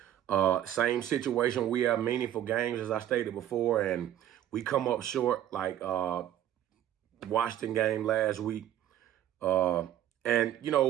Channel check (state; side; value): quieter; left; 11.7 dB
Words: same situation. We have meaningful games, as I stated before, and we come up short, like Washington game last week. But